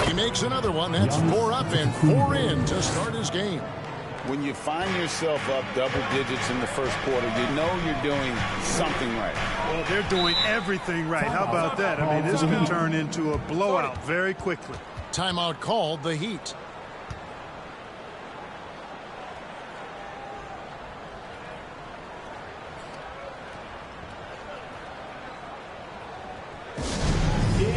He makes another one. That's 4 up and 4 in to start his game. When you find yourself up double digits in the first quarter, you know you're doing something right. Well, they're doing everything right. How about that? I mean, this could turn into a blowout very quickly. Timeout called, the Heat.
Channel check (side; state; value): both; identical; correlation 1.00